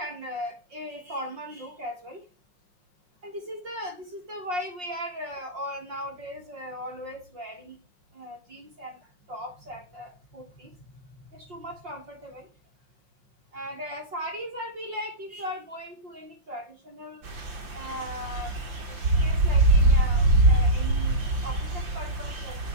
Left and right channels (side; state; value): left; late; 5.8 ms